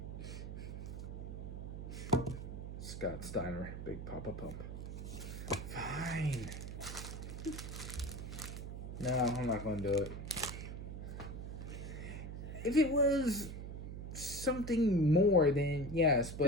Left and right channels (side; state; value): right; noise; hum, 7 dB below the sound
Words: Scott Steiner, Big Papa Pump. Fine. No, I'm not going to do it. If it was something more, then yes,